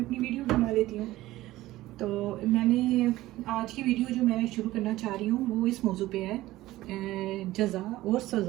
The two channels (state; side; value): quieter; left; 16.6 dB